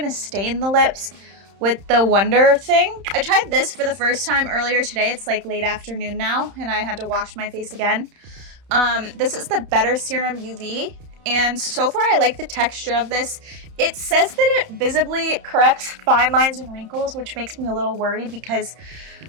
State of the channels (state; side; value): late; left; 31 ms